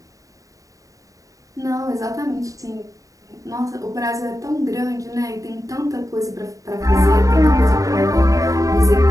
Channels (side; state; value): left; late; 0.16 ms